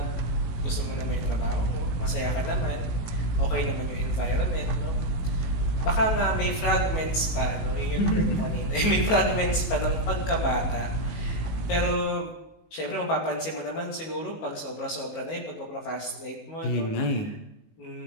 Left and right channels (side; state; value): right; late; 19 ms